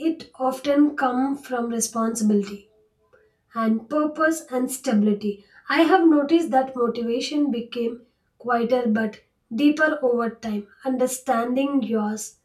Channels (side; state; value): both; identical; correlation 1.00